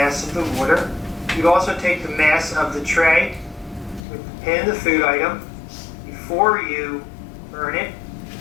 of the water. You'd also take the mass of the tray with the pin of the food item before you burn it,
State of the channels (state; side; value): drops out; right; at 4.0 s